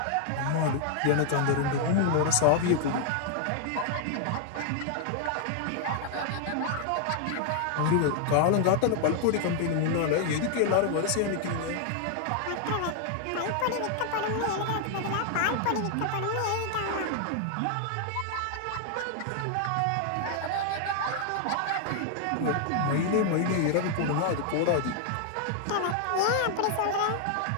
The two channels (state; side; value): different; both; correlation 0.00